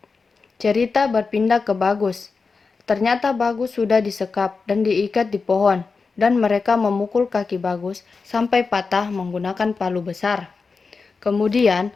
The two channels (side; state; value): right; quieter; 4.6 dB